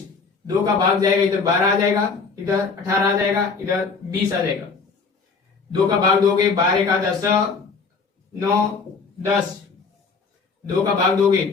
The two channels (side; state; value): right; quieter; 4.8 dB